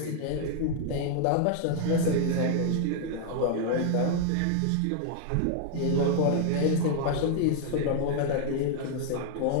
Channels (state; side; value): different; both; correlation 0.00